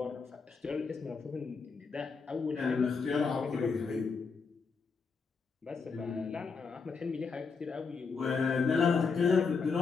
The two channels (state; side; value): quieter; right; 5.0 dB